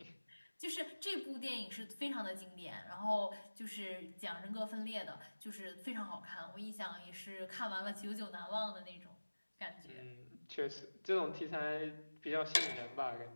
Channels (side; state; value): both; inverted; correlation -1.00